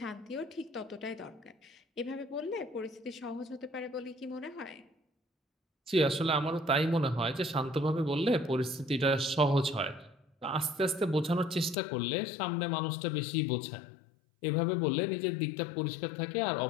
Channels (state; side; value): drops out; right; at 11.8 s